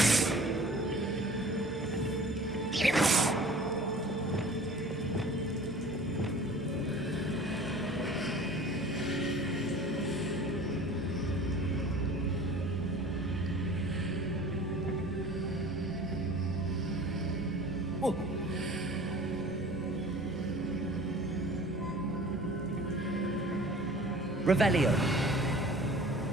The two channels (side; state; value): both; normal; correlation 0.44